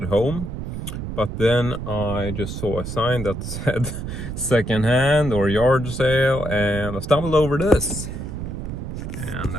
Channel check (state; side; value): noise; right; rumble, 6 dB below the sound